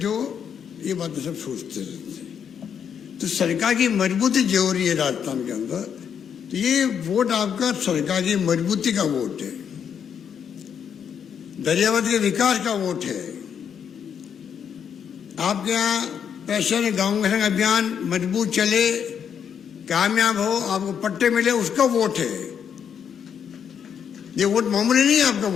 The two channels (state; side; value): quieter; right; 7.8 dB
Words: ये बातें सब सोचते रहते हैं। तो सरकार की मजबूती जो हो रही है राजस्थान के अंदर, तो ये वोट आपका सरकार की मजबूती का वोट है, दरियावत के विकास का वोट है। आपके यहाँ पैशन गाँव संग अभियान मजबूत चले, कामयाब हो, आपको पट्टे मिले, उसका वोट है। ये वोट मामूली नहीं है आपका